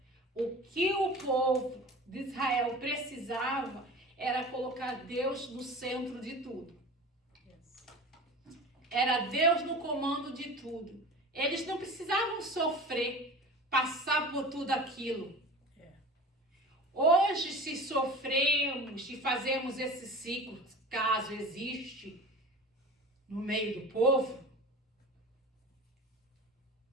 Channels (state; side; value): normal; both; correlation 0.36